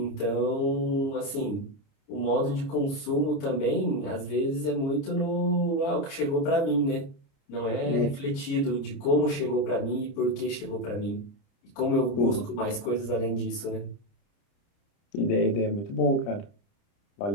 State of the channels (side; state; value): right; late; 30 ms